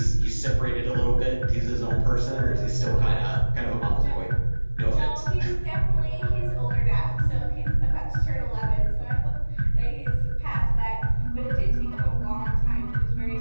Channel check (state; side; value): inverted; both; correlation -1.00